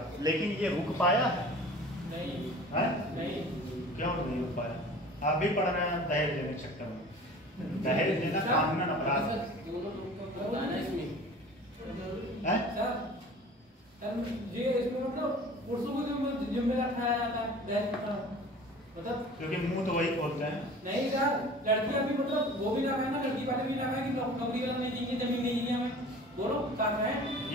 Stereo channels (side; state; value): both; normal; correlation 0.43